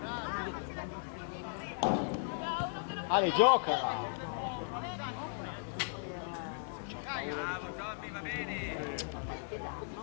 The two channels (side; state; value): right; silent; digital silence